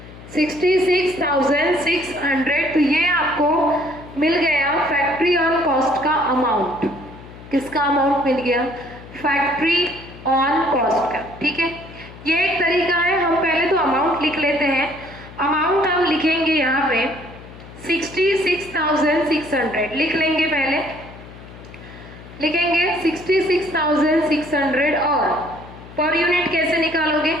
तो ये आपको मिल गया फैक्ट्री ऑन कॉस्ट का अमाउंट। किसका अमाउंट मिल गया, फैक्ट्री ऑन कॉस्ट का, ठीक है। ये एक तरीका है, हम पहले तो अमाउंट लिख लेते हैं। अमाउंट हम लिखेंगे यहाँ पे 66,600 लिख लेंगे, पहले लिखेंगे 66,600 और पर यूनिट कैसे निकालोगे,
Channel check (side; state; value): left; noise; hum, 17 dB below the sound